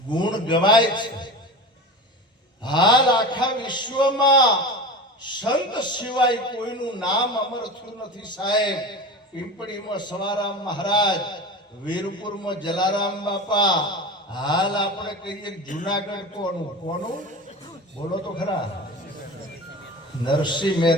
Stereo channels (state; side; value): normal; both; correlation 0.30